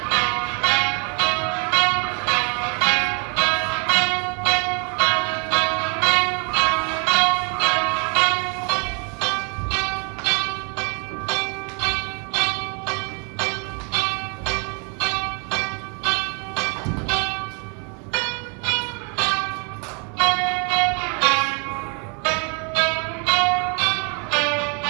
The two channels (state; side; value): quieter; left; 35.4 dB